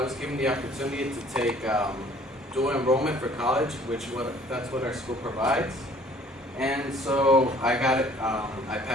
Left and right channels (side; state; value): both; normal; correlation 0.55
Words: given the opportunity to take dual enrollment for college, that's what our school provides. And so I got it, I